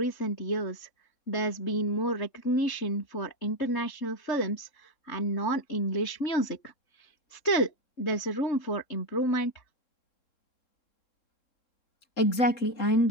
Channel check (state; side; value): late; right; 3.8 ms